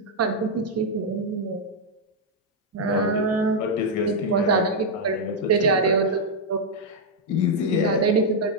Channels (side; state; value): both; normal; correlation -0.02